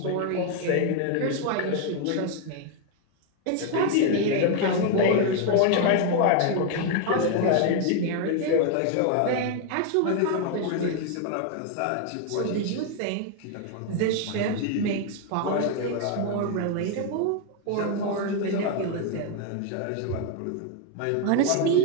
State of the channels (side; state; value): both; different; correlation 0.01